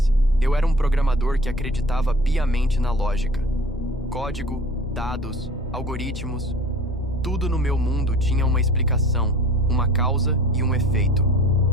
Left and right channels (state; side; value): normal; both; correlation 0.44